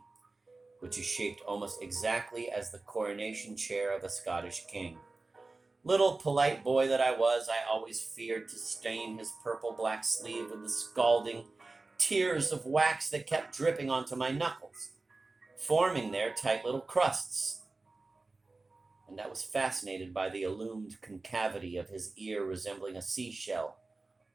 which is shaped almost exactly as the coronation chair of a Scottish king. Little polite boy that I was, I always feared to stain his purple-black sleeve with the scalding tears of wax that kept dripping onto my knuckles, forming there tight little crusts. And I was fascinated by the illumined concavity of his ear resembling a seashell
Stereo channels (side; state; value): left; quieter; 3.4 dB